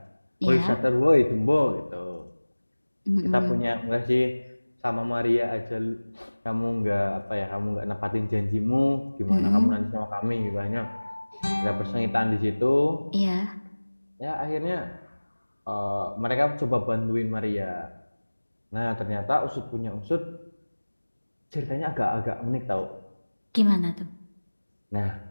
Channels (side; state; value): both; inverted; correlation -1.00